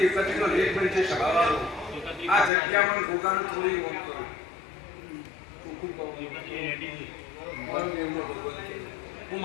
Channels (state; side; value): drops out; right; at 2.5 s